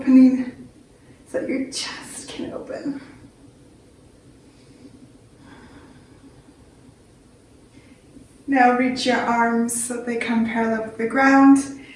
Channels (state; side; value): identical; both; correlation 1.00